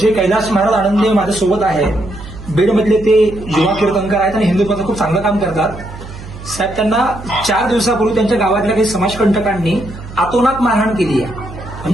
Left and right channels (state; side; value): noise; right; hum, 14 dB below the sound